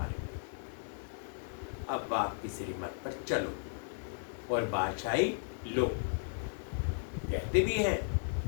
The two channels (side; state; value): right; silent; 54 dB below the other